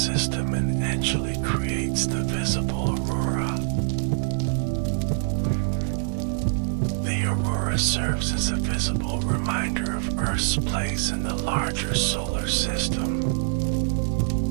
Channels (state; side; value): silent; left; 62 dB below the other